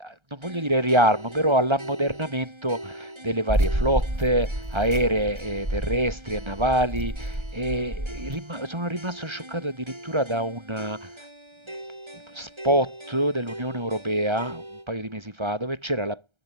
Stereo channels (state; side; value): late; left; 1.3 ms